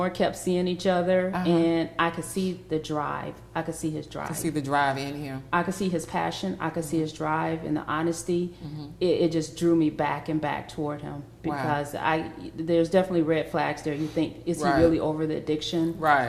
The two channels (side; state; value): both; identical; correlation 1.00